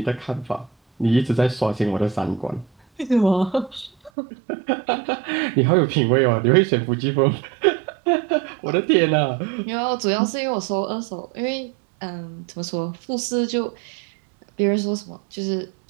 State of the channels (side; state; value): left; drops out; at 4.1 s